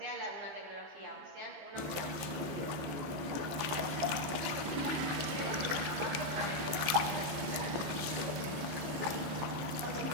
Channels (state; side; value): late; left; 15 ms